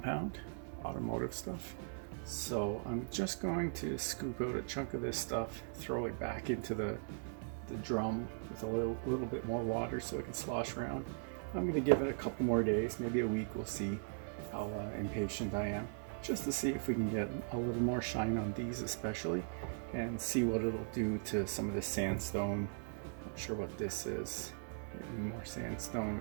automotive stuff. So I'm just going to scoop out a chunk of this stuff, throw it back into the drum with a little bit more water so it can slosh around. I'm going to give it a couple more days, maybe a week. We'll see how impatient I am, just to see if we can get a little more shine on these especially, and see what it'll do to some of this sandstone. Not sure what this is. Maybe more sandstone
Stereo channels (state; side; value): silent; left; 52 dB below the other